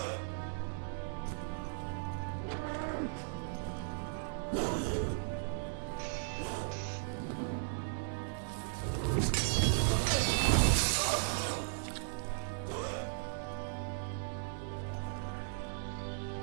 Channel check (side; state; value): left; silent; 53 dB below the other